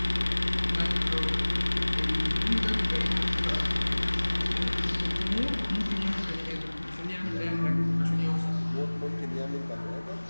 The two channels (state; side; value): inverted; both; correlation -1.00